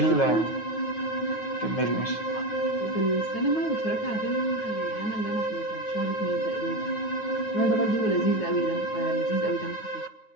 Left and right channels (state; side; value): late; right; 9.3 ms